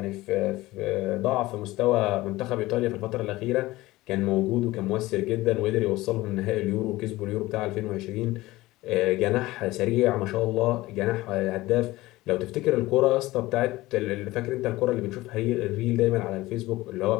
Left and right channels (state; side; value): quieter; right; 18.6 dB